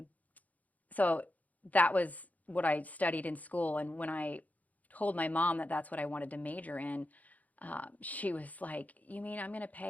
So that was what I studied in school, and when I told my mom that that's what I wanted to major in, she was like, "You mean I'm going to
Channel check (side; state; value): right; late; 0.076 ms